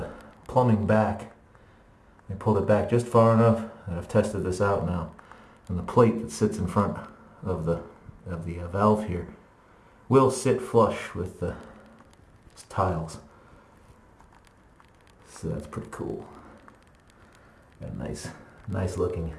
plumbing back, we pulled it back just far enough, and I've tested this out now, and the plate that sits in front of the valve here will sit flush with the tiles. So that's pretty cool. Got a nice looking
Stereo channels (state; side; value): identical; both; correlation 1.00